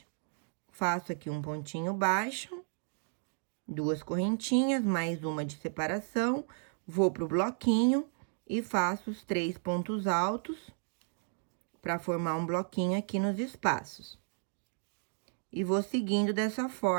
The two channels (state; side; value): silent; left; 55 dB below the other